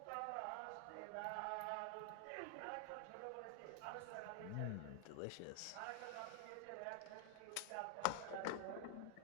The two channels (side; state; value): both; different; correlation 0.00